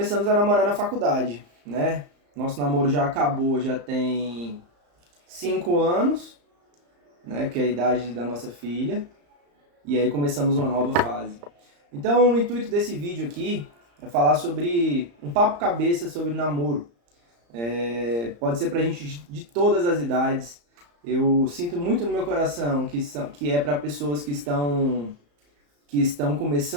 a namorar na faculdade, né? Nosso namoro já acabou, já tem 5 anos, né? Que é a idade da nossa filha. E aí começamos uma nova fase. Então, o intuito desse vídeo aqui é falar sobre um papo cabeça sobre namoro. Pode ser pra gente de todas as idades. Eu sinto muito no meu coração que é para pessoas que estão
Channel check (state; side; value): late; left; 34 ms